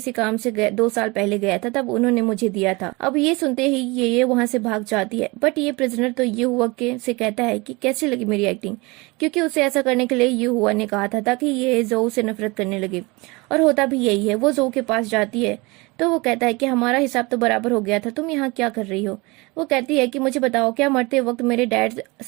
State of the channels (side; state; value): left; quieter; 25.0 dB